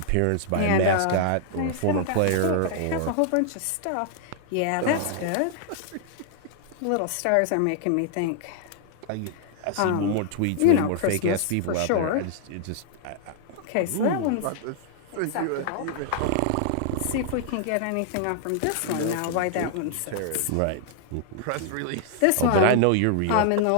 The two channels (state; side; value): different; both; correlation 0.00